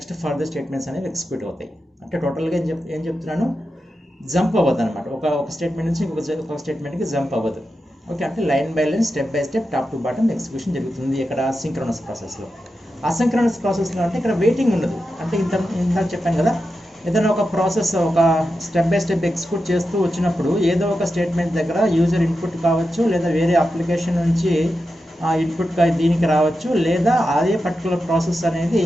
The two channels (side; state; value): both; normal; correlation 0.90